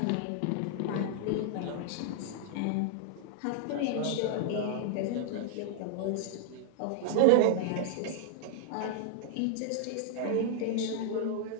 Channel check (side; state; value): both; different; correlation -0.01